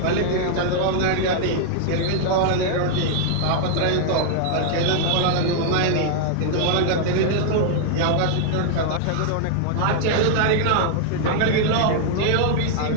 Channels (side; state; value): both; different; correlation 0.00